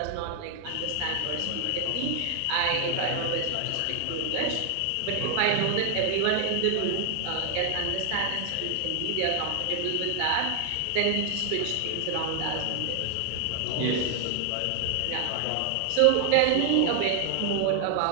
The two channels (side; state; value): both; different; correlation 0.00